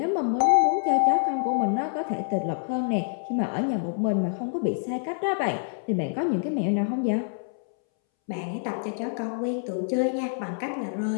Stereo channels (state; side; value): silent; right; 61 dB below the other